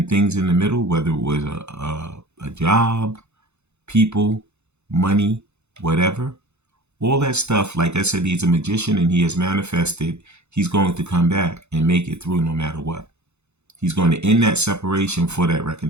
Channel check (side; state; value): left; late; 0.81 ms